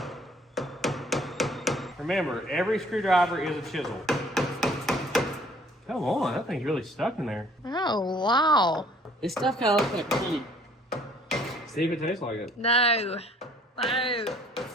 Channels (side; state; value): both; normal; correlation 0.58